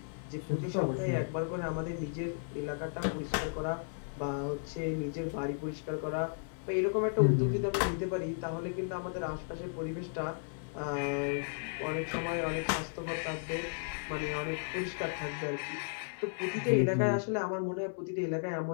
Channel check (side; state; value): right; silent; digital silence